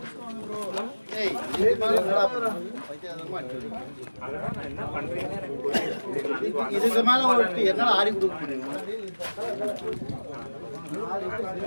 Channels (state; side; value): inverted; both; correlation -1.00